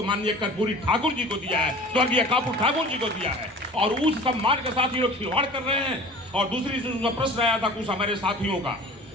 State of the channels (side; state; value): both; normal; correlation 0.42